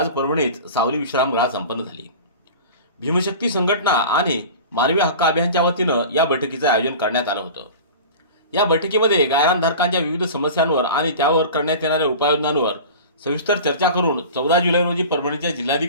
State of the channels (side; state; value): both; inverted; correlation -0.36